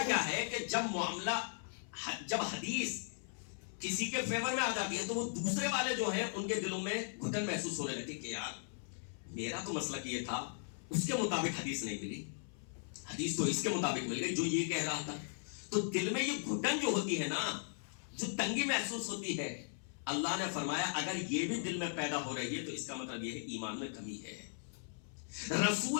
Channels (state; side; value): silent; right; 52 dB below the other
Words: کیا ہے کہ جب حدیث کسی کے فیور میں آ جاتی ہے تو وہ دوسرے والے جو ہیں ان کے دلوں میں گھٹن محسوس ہونے لگتی کہ یار میرا تو مسلک یہ تھا، اس کے مطابق حدیث نہیں ملی، حدیث تو اس کے مطابق مل گئی جو یہ کہہ رہا تھا. تو دل میں یہ گھٹن جو ہوتی ہے نا، جو تنگی محسوس ہوتی ہے، اللہ نے فرمایا اگر یہ بھی دل میں پیدا ہو رہی ہے تو اس کا مطلب یہ ہے ایمان میں کمی ہے.